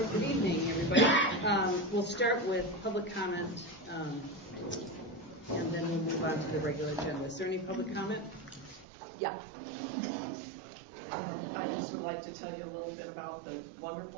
evening, everybody. We'll start with public comment, and then we'll move on to the regular agenda. Is there any public comment? Yeah. I just would like to tell you a little bit about the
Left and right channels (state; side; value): drops out; left; at 8.8 s